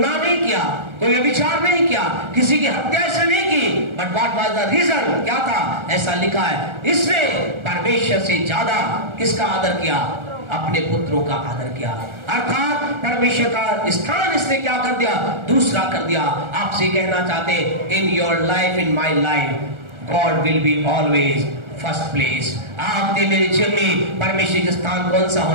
नहीं किया, कोई व्यभिचार नहीं किया, किसी की हत्या ऐसे नहीं की। But what was the reason? क्या था? ऐसा लिखा है, इसने परमेश्वर से ज्यादा किसका आदर किया? अपने पुत्रों का आदर किया। अर्थात परमेश्वर का स्थान इसने क्या कर दिया? दूसरा कर दिया। आपसे कहना चाहते, in your life, in my life, God will be always first place. आपके मेरे जीवन में परमेश्वर का स्थान कौन सा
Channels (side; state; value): left; late; 1.4 ms